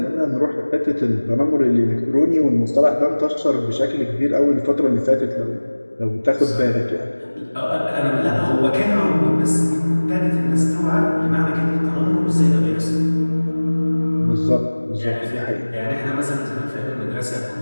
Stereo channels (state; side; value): inverted; both; correlation -1.00